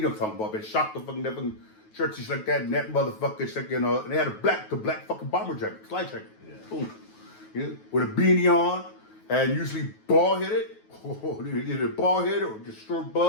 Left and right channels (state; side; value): late; right; 9.3 ms